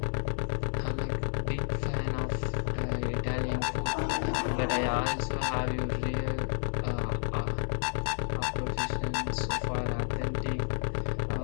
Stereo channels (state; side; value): silent; right; 57 dB below the other